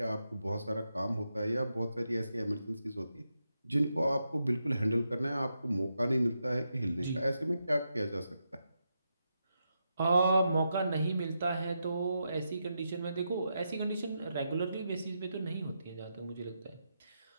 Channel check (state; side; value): inverted; both; correlation -0.85